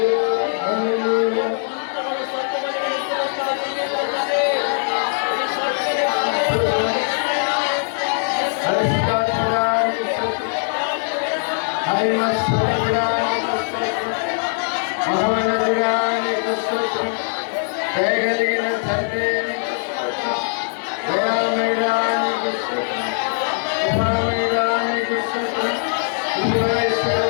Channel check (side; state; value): right; silent; 65 dB below the other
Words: హల్లెలూయా. దయగలిగిన తండ్రి దయామయుడానికి